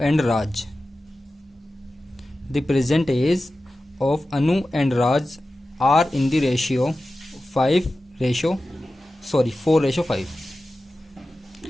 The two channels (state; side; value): normal; both; correlation 0.94